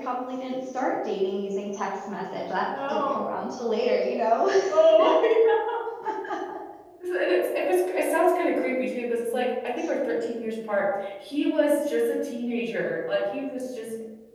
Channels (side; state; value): both; identical; correlation 1.00